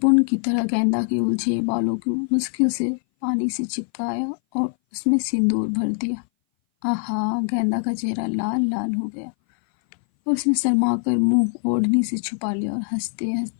की तरह गेंदा के उलझे बालों को मुश्किल से पानी से चिपकाया और उसमें सिंदूर भर दिया। आहा, गेंदा का चेहरा लाल लाल हो गया, और उसने शर्मा कर मुंह ओढ़नी से छुपा लिया और हंसते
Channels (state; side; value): silent; right; 59 dB below the other